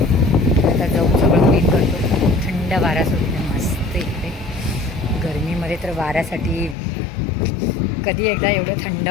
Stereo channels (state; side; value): drops out; right; at 6.8 s